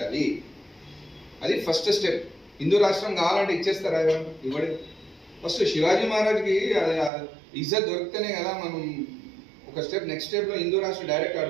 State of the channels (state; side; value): drops out; left; at 7.1 s